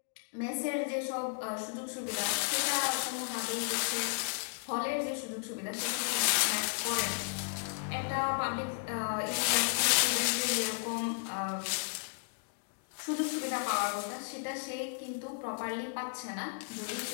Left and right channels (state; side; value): silent; right; digital silence